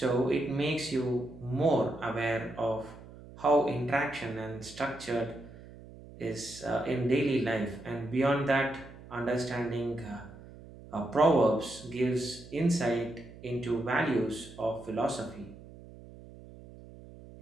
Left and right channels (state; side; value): noise; right; hum, 18 dB below the sound